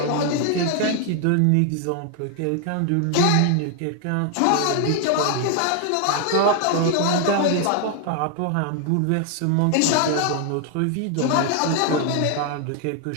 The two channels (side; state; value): both; different; correlation 0.00